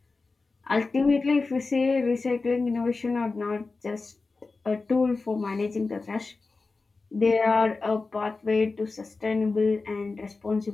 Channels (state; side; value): quieter; right; 3.9 dB